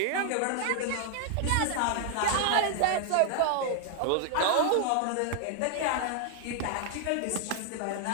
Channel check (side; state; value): both; different; correlation 0.00